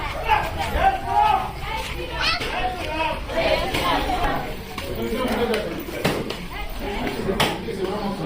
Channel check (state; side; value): identical; both; correlation 1.00